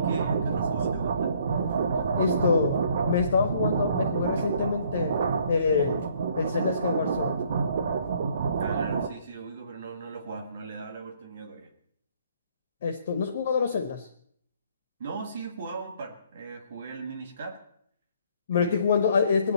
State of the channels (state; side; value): inverted; both; correlation -0.63